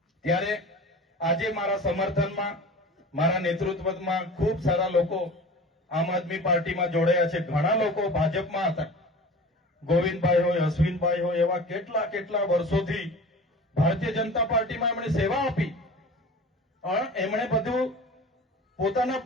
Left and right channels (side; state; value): both; normal; correlation 0.38